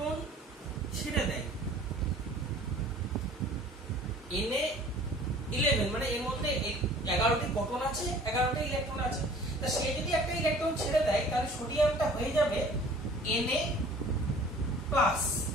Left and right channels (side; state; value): both; normal; correlation 0.49